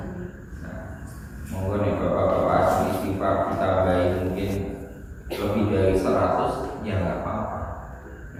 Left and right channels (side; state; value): both; identical; correlation 1.00